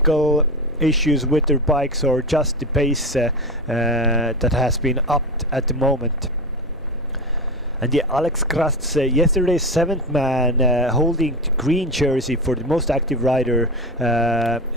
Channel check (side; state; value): both; normal; correlation 0.22